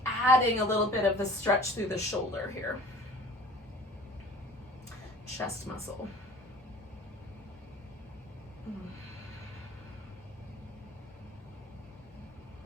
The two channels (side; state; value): both; normal; correlation 0.46